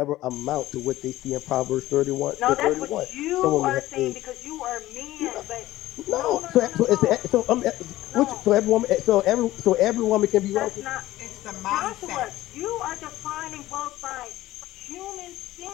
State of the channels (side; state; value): right; quieter; 15.9 dB